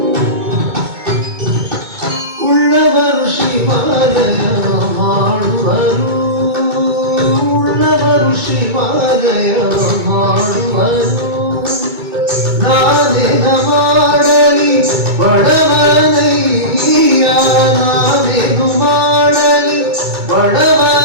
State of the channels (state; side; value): late; left; 2.2 ms